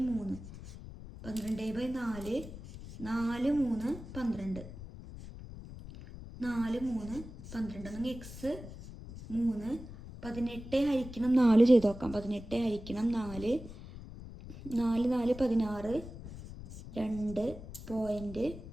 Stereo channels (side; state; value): left; noise; rumble, 13 dB below the sound